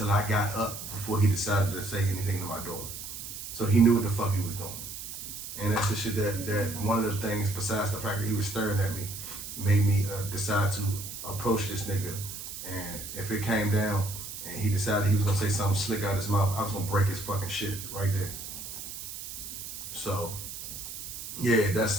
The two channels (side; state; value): right; noise; hiss, 9 dB below the sound